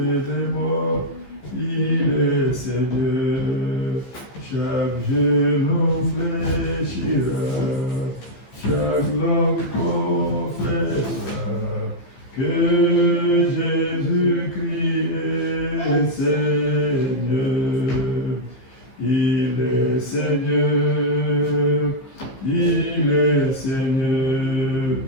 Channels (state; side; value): late; right; 15 ms